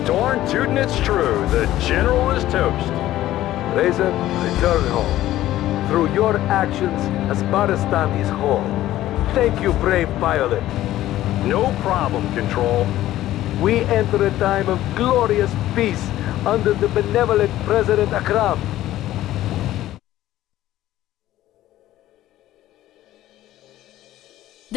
Darn tootin' it's true. The General is toast. Razor, return home. Through your actions, Asbaristan is whole. Thank you, brave pilot. No problem, Control. We enter a time of glorious peace under the benevolent President Akram.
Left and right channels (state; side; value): quieter; right; 14.3 dB